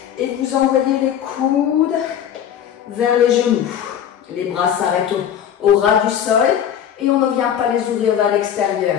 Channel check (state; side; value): quieter; right; 9.4 dB